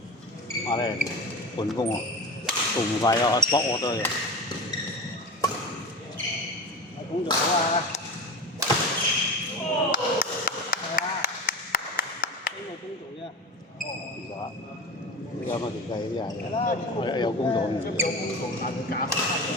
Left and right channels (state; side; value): normal; both; correlation 0.29